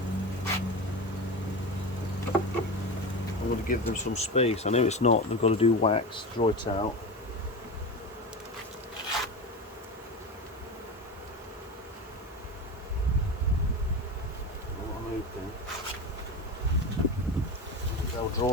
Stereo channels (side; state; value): both; normal; correlation 0.24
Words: I'm going to give them some space. I know it's not, they've got to do wax, draw it out. I'm hoping they'll